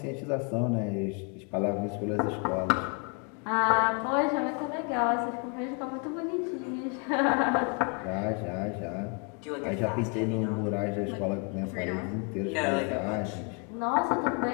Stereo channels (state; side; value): quieter; right; 35.6 dB